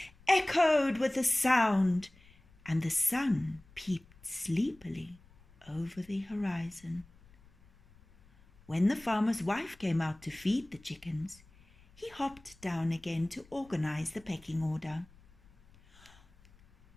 echoed with the sound, and the sun peeped sleepily over the horizon. When the farmer's wife came out to feed the chickens, he hopped down again to organize the pecking order.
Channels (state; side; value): noise; left; rumble, 27 dB below the sound